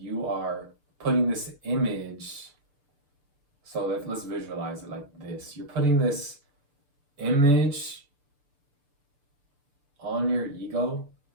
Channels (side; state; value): left; late; 6.9 ms